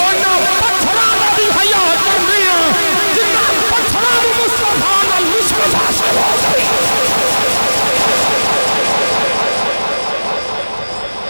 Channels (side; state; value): both; inverted; correlation -1.00